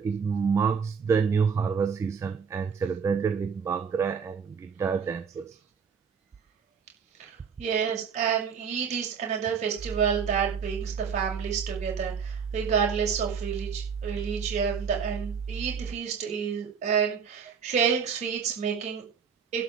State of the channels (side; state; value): left; quieter; 6.4 dB